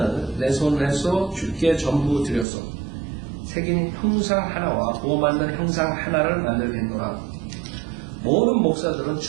내 손에서 주께 전부 드렸소. 새긴 형상 하나와 부어 만든 형상 하나를 만들겠노라. 모든 목사들은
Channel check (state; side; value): drops out; left; at 2.5 s